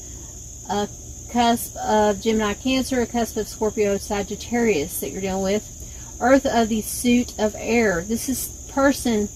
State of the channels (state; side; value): identical; both; correlation 1.00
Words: a cusp of Gemini, Cancer, a cusp of Scorpio, Sagittarius that you're dealing with. Earth of the suit of air. This person